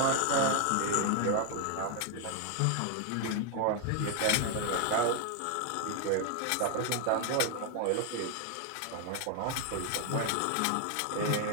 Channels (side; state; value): both; different; correlation 0.01